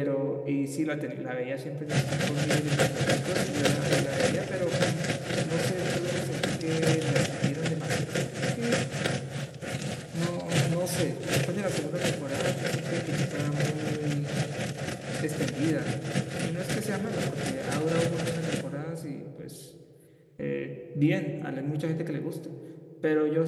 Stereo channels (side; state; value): both; identical; correlation 1.00